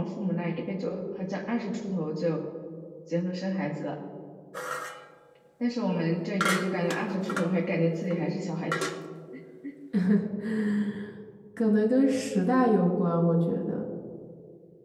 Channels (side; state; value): both; identical; correlation 1.00